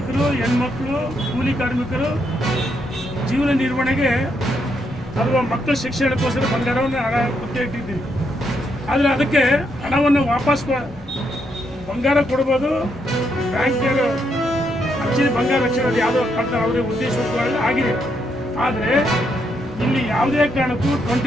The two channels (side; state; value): both; normal; correlation 0.78